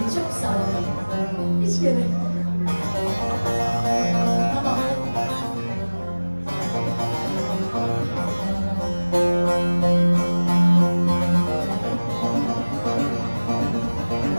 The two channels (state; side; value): inverted; both; correlation -1.00